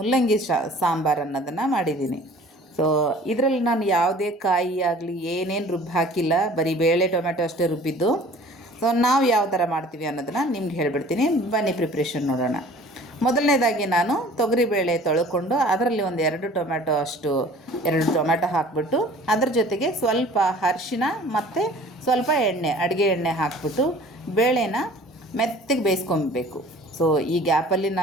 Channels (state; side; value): normal; both; correlation 0.48